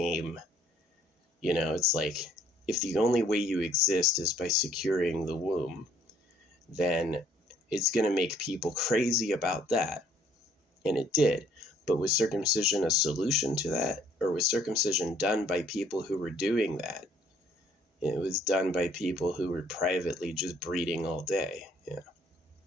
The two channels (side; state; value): both; normal; correlation 0.62